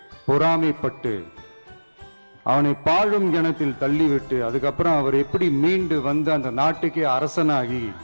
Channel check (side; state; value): both; inverted; correlation -1.00